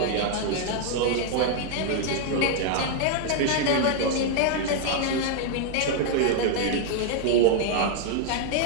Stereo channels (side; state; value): both; different; correlation 0.00